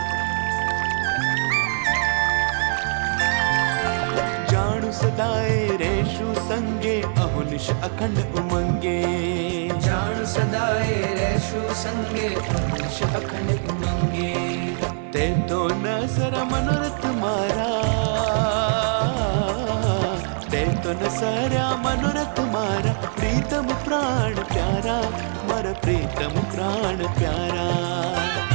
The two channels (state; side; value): silent; left; 59 dB below the other